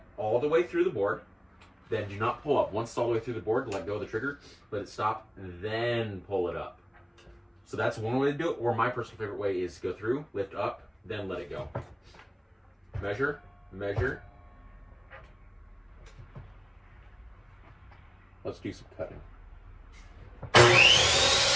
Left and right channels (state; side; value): identical; both; correlation 1.00